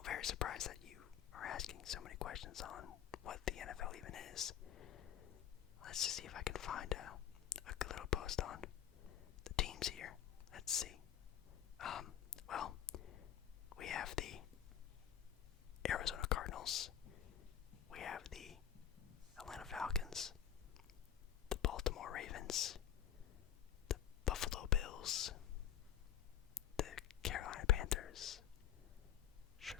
very surprised that you are asking so many questions on what the NFL even is. Let's just see if I can find a good little post on the teams here. Let's see. Well, we have the Arizona Cardinals. We have the Atlanta Falcons, the Baltimore Ravens, the Buffalo Bills, the Carolina Panthers,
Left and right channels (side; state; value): right; quieter; 10.4 dB